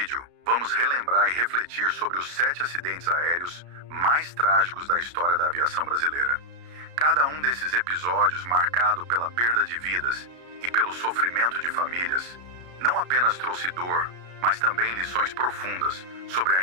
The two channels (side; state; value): left; late; 33 ms